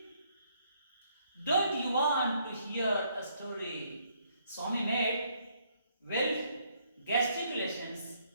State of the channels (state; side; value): inverted; both; correlation -0.69